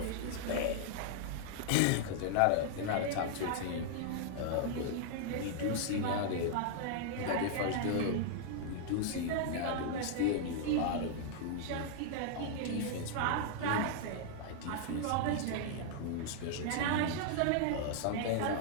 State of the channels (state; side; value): different; both; correlation -0.01